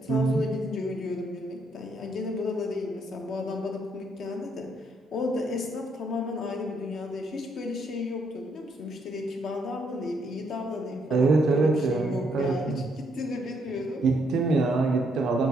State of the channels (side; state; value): both; normal; correlation 0.73